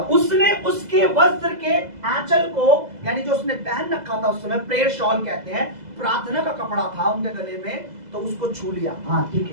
उसने उसके वस्त्र के आंचल को, यानी जो उसने पहन रखा था उस समय, प्रेयर शॉल कहते हैं, प्रार्थना का कपड़ा था उनके गले में, तो उसको छू लिया। हाँ ठीक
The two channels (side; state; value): left; late; 2.0 ms